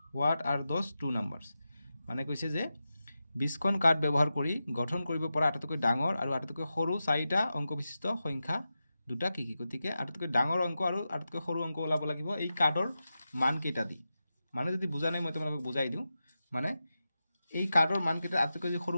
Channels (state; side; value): inverted; both; correlation -0.91